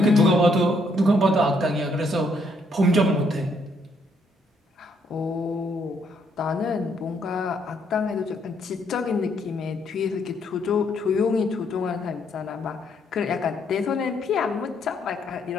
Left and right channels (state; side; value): normal; both; correlation 0.71